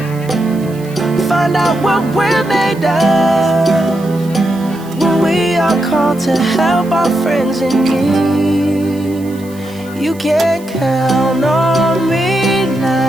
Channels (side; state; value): right; noise; hiss, 23 dB below the sound